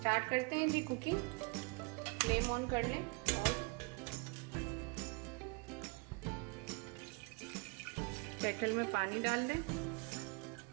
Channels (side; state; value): left; quieter; 30.0 dB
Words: करते हैं जी कुकिंग। फ्लेम ऑन कर लें और केटल में पानी डाल दें